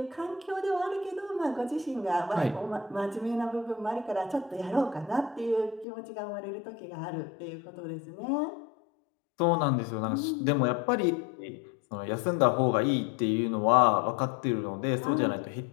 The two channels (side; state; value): right; drops out; at 5.9 s